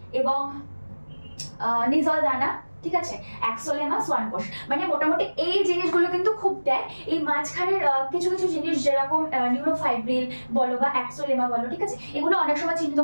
এবং নিজল দানা। ঠিক আছে, অ্যাক্সোলেমা, সোয়ান কোষ। মানে মোটামুটি এই জিনিসগুলো কিন্তু খুব দেয়। এই মাঝখানের কিছু কিছু জিনিস যেরকম নিউরোফাইব্রিল বলো বা অ্যাক্সোলেমা বলো, ঠিক আছে, এগুলো অনেক সময়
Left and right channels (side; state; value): both; inverted; correlation -1.00